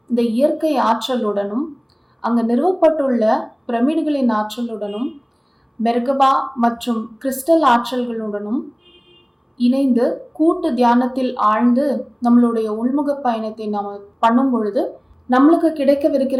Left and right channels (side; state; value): both; identical; correlation 1.00